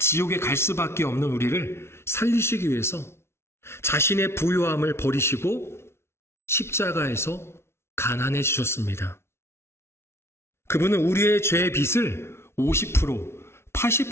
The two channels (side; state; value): right; late; 0.12 ms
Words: 갈 수밖에 없는 우리를 살리시기 위해서 자신의 부유함을 버리시고 십자가에서 가난해지셨습니다. 그분은 우리의 죄의 빚을 50%,